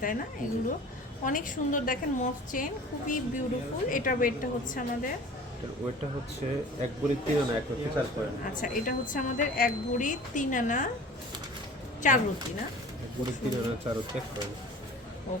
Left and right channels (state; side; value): normal; both; correlation 0.43